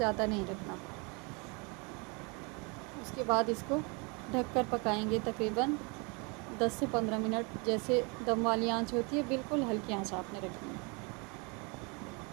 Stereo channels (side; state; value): left; quieter; 30.9 dB